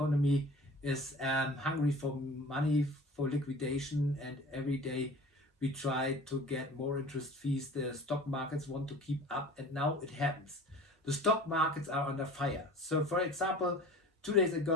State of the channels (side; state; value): both; normal; correlation 0.42